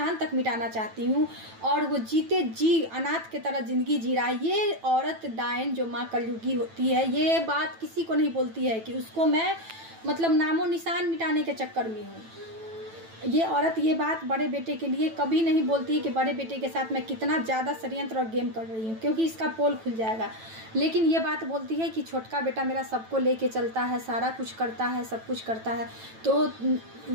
तक मिटाना चाहती हूँ, और वो जीते जी अनाथ के तरह ज़िंदगी जी रहा है। ये औरत डायन जो माँ कलयुगी होती है, ये बात किसी को नहीं बोलती है कि उसको मैं मतलब नामो निशान मिटाने के चक्कर में हूँ। ये औरत ये बात बड़े बेटे के लिए कभी नहीं बोलती है कि बड़े बेटे के साथ मैं कितना ज़्यादा षड्यंत्र और गेम कर रही हूँ, क्योंकि इसका पोल खुल जाएगा। लेकिन ये बात बोलती है कि छोटका बेटा मेरा सबको लेके चलता है, सारा कुछ करता है, सब कुछ करता है। तो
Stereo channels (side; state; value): left; late; 9.1 ms